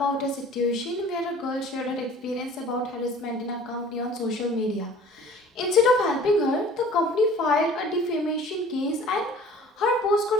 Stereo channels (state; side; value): normal; both; correlation 0.48